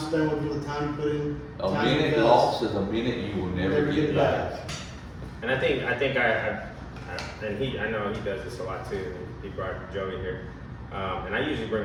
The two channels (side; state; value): both; identical; correlation 1.00